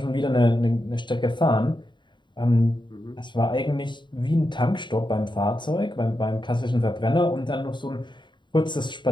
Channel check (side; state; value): right; late; 0.22 ms